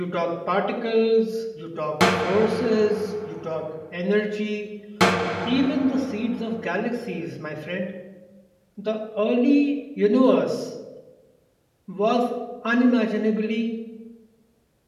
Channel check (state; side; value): identical; both; correlation 1.00